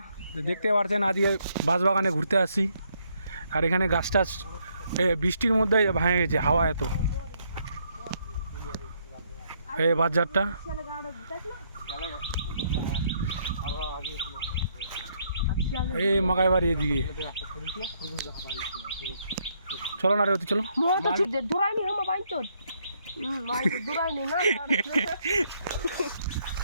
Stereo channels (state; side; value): inverted; both; correlation -0.72